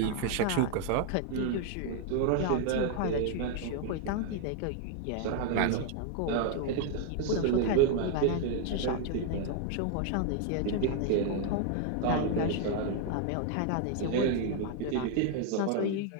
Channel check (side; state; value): both; different; correlation 0.00